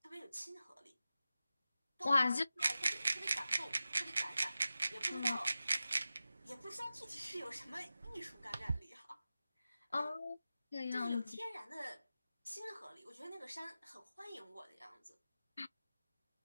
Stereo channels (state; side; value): inverted; both; correlation -0.93